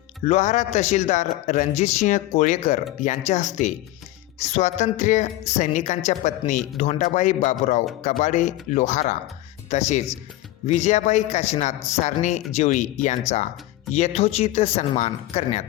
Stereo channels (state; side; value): quieter; right; 15.9 dB